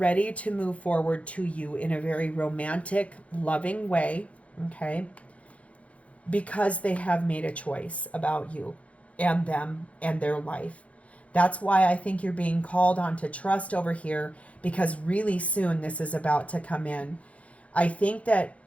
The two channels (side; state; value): right; late; 0.065 ms